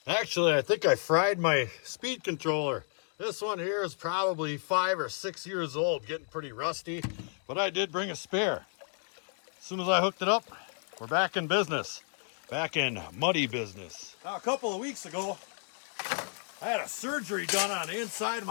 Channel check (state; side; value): silent; right; 57 dB below the other